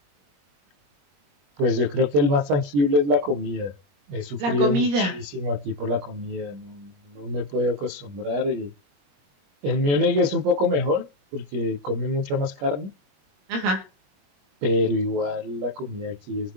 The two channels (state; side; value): late; left; 21 ms